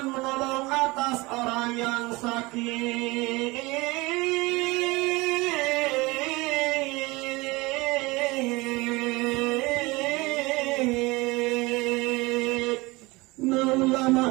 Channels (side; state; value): left; quieter; 23.0 dB